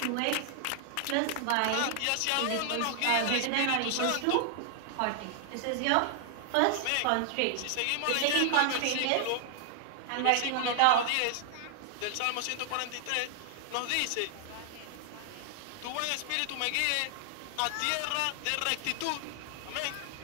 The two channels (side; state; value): both; different; correlation 0.00